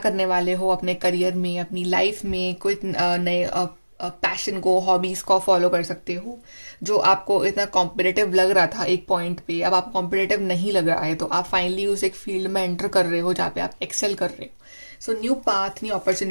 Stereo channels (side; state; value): both; inverted; correlation -1.00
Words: वाले हो अपने करियर में, अपनी लाइफ में, कोई नए पैशन को, हॉबीज को फॉलो कर सकते हो। जो आपको इतना कॉम्पिटिटिव लग रहा था एक पॉइंट पे, अब आपको कॉम्पिटिटिव नहीं लग रहा है, तो आप फाइनली उस एक फील्ड में एंटर कर रहे हो जहाँ पे आप एक्सेल कर रहे हो। So new path, new